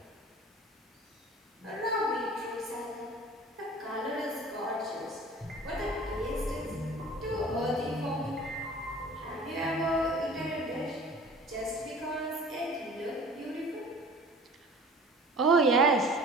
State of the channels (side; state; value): both; normal; correlation 0.44